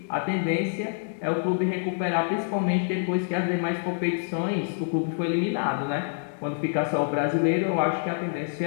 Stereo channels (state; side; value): silent; right; digital silence